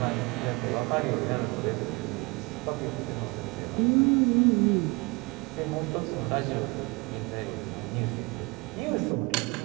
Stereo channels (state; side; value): quieter; left; 27.0 dB